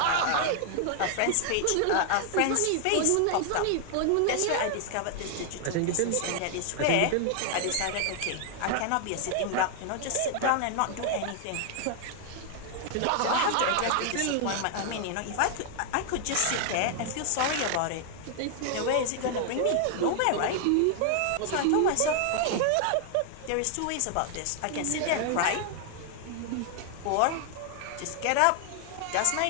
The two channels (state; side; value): different; both; correlation 0.00